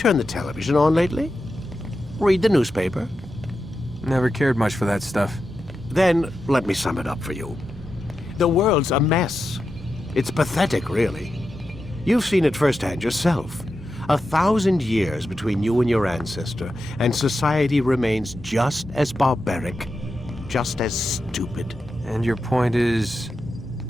the television on lately? Read the newspaper? Never cared much for that stuff. Then, let me sum it up for you. The world's a mess. It's pathetic, really. You've seen it firsthand yourself. 1,000 years between you and your ancestor, and society remains just as barbaric, just as stupid. And your point is?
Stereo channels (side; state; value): both; normal; correlation 0.89